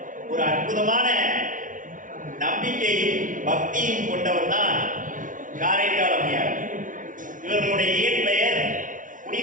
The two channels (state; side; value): late; left; 0.38 ms